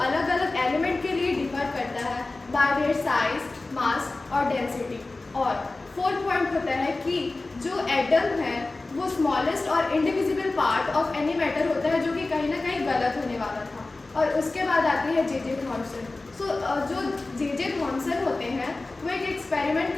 अलग अलग एलिमेंट के लिए डिफर करता है बाय देयर साइज, मास और डेंसिटी। और फोर्थ पॉइंट होता है कि जो एटम है वो स्मॉलेस्ट और indivisible part of any matter होता है, जो कि कहीं ना कहीं गलत होने वाला था। और उसके बाद आती है जे.जे. थॉमसन। जो जे.जे. थॉमसन होते हैं वो एक एक्सपेरिमेंट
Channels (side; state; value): right; quieter; 3.2 dB